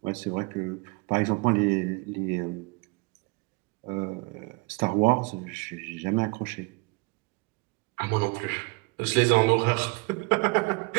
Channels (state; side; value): quieter; left; 28.1 dB